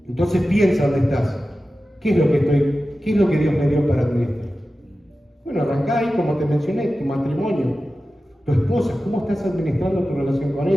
Entonces piensa dónde estás. ¿Qué es lo que Dios me dio para administrar? Bueno, arrancá ahí, como te mencioné, tu matrimonio. Tu esposa, ¿cómo estás administrando tu relación con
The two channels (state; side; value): normal; both; correlation 0.94